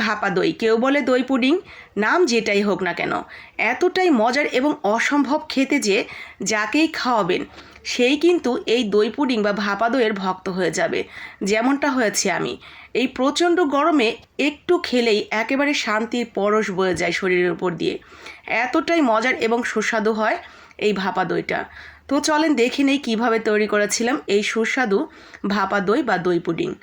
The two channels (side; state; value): both; identical; correlation 1.00